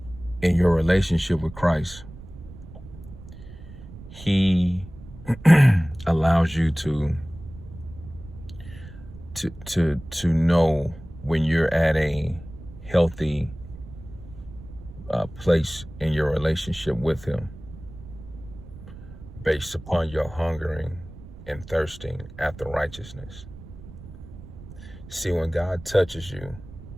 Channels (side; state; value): right; noise; rumble, 16 dB below the sound